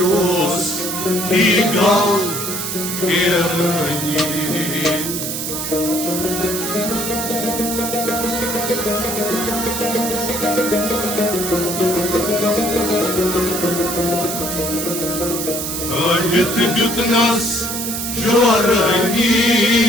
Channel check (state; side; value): noise; right; hiss, 4 dB below the sound